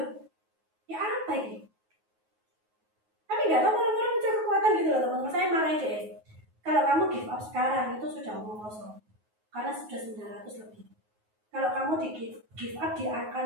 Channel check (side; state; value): left; late; 9.4 ms